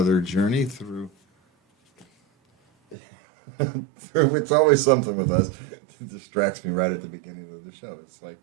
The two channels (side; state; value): left; drops out; at 3.0 s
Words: journey through it's always something with us. It distracts me right at the beginning of the show. It's like,